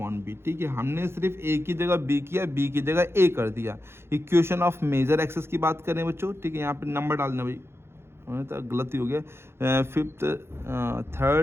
बी, ठीक है। हमने सिर्फ a की जगह b किया, b की जगह a कर दिया। इक्वेशन ऑफ मेजर एक्सेस की बात करें बच्चों, ठीक है, यहाँ पे नंबर डालना भाई, तो गलती हो गया, 5th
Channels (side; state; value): left; late; 0.12 ms